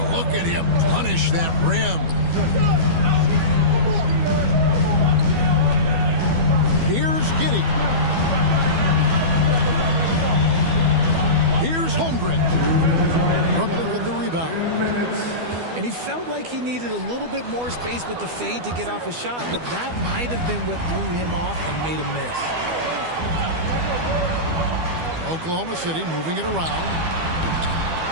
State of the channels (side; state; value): left; late; 12 ms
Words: look at him punish that rim. Here's Giddey. Here's Holmgren. Brooklyn with the rebound. And he felt like he needed a little bit more space with the fade to get off a shot, but that might have been what threw him off and made him miss. Oklahoma City moving it around.